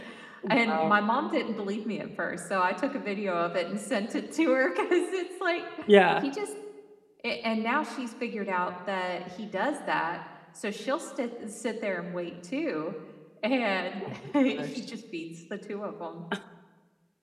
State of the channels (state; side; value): identical; both; correlation 1.00